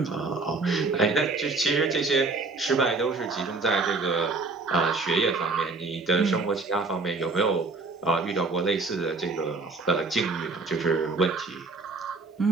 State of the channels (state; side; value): quieter; left; 3.7 dB